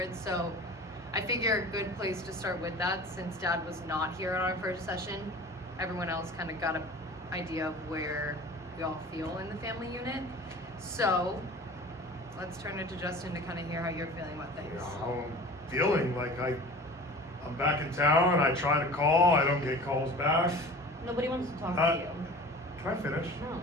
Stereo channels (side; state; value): both; normal; correlation 0.40